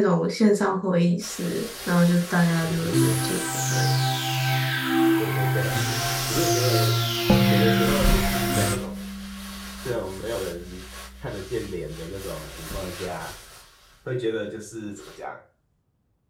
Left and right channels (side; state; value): both; identical; correlation 1.00